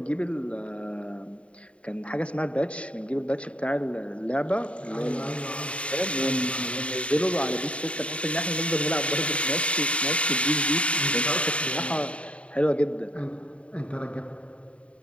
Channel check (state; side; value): late; right; 0.061 ms